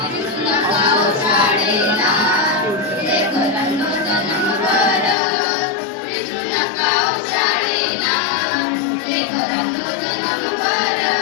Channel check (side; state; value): right; drops out; at 5.2 s